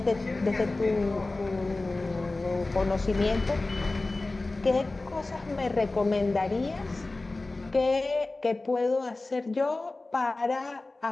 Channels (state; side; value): quieter; right; 3.2 dB